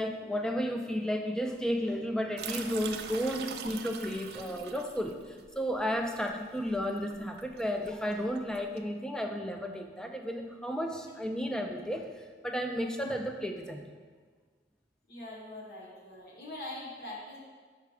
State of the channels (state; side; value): normal; both; correlation 0.77